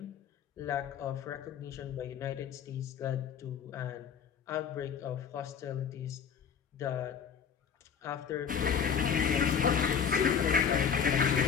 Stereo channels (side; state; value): right; quieter; 7.3 dB